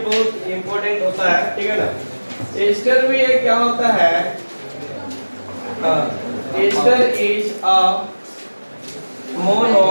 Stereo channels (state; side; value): inverted; both; correlation -1.00